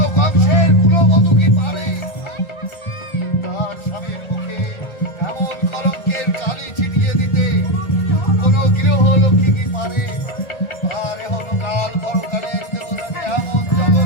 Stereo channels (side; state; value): right; late; 1.9 ms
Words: কংসের কুলবধূ কি পারে তার স্বামীর মুখে এমন কলঙ্কের কালি ছিটিয়ে দিতে? কোন গৃহলক্ষ্মী কি পারে তার হনকাল পরকালের দেবতাকে এমন